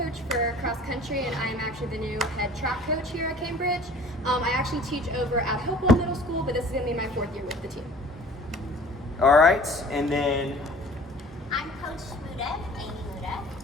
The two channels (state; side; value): normal; both; correlation 0.48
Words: for cross country, and I'm actually the new head track coach here at Cambridge. I actually teach over at Hopewell Middle School, but this is going to be my 4th year with the team. All right, and then I'm Coach Muda, Amy Muda,